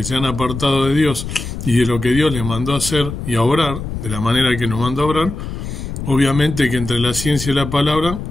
se han apartado de Dios y de lo que Dios les mandó a hacer y a obrar, de la manera que nos mandó a obrar, obviamente que entre la ciencia y la palabra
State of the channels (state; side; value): noise; left; rumble, 7 dB below the sound